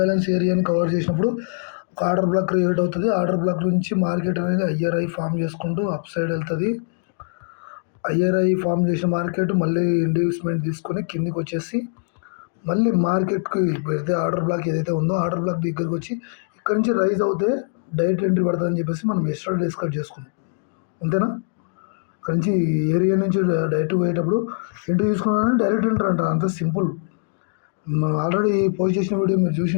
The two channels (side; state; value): right; silent; digital silence